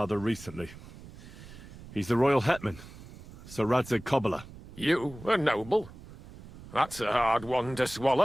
recently. He's the royal hetman, Sir Radzig Kobyla. You, a noble? That's a hard one to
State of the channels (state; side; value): noise; right; rumble, 17 dB below the sound